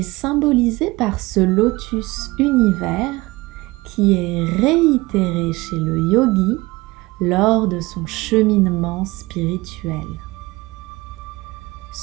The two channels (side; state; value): left; quieter; 21.8 dB